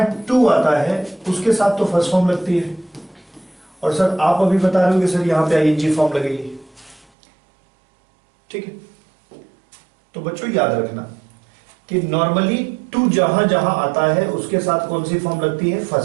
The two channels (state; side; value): drops out; left; at 7.1 s